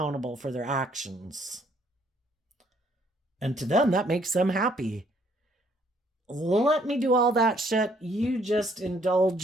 for their actions. And to them, that makes them happy. Let me do all that shit. You just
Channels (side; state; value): both; normal; correlation 0.66